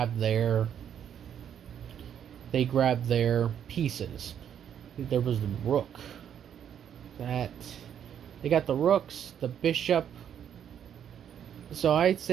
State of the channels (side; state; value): left; quieter; 9.1 dB